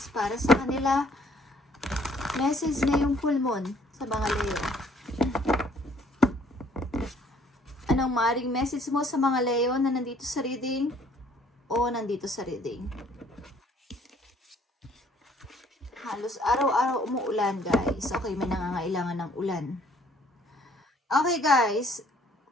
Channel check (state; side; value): normal; both; correlation 0.61